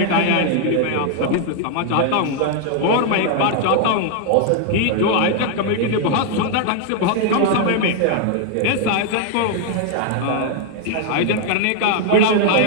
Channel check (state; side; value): different; both; correlation 0.00